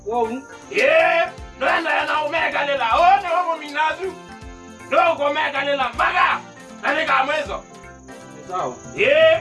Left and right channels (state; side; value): identical; both; correlation 1.00